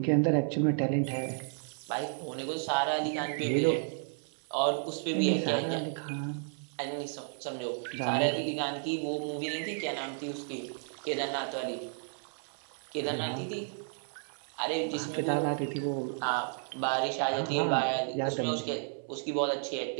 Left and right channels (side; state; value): left; silent; 56 dB below the other